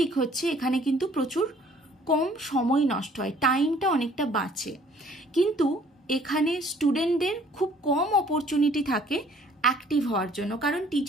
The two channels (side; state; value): both; normal; correlation 0.57